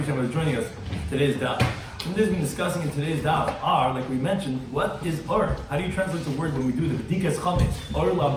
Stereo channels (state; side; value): identical; both; correlation 1.00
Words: for joining us. Today's Daf. What we've been discussing in today's Daf are, like we mentioned, what is Or? How do you translate the word when we do the B'dikas Chametz? Orla